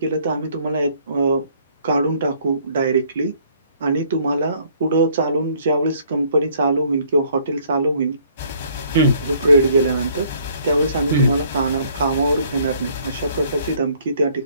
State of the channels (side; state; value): both; inverted; correlation -0.61